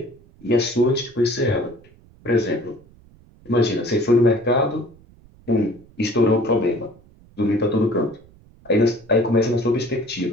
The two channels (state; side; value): noise; right; rumble, 26 dB below the sound